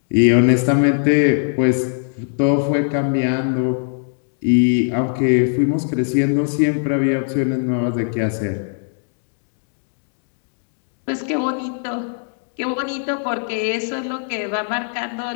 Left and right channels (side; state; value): right; silent; 65 dB below the other